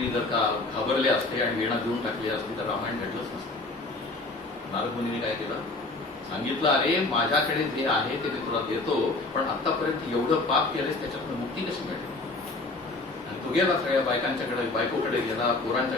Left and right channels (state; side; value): quieter; right; 3.2 dB